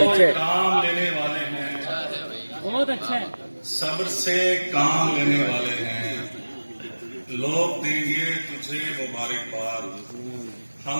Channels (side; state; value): both; inverted; correlation -1.00